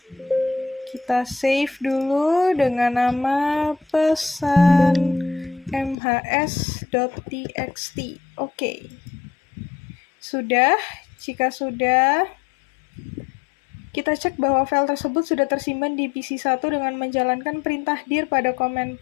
Kita save dulu dengan nama pesan mhs.txt. Oke. Sudah. Jika sudah, kita cek bahwa file tersebut sudah tersimpan di PC1 dengan menjalankan perintah dir pada command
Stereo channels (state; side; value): drops out; right; at 6.0 s